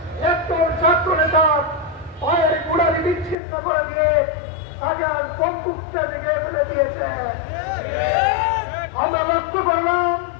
একজন ছাত্র নেতা পায়ের গোড়ালি বিচ্ছিন্ন করে দিয়ে তাকে আর বন্দুকটা ভেঙে ফেলে দিয়েছে। আমরা লক্ষ্য করলাম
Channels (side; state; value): right; drops out; at 3.4 s